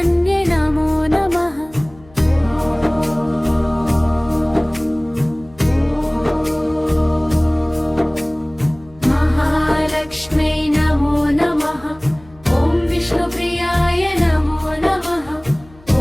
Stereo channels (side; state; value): left; noise; hum, 25 dB below the sound